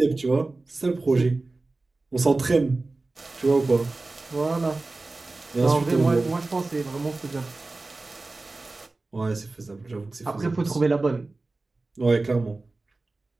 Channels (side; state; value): left; quieter; 3.3 dB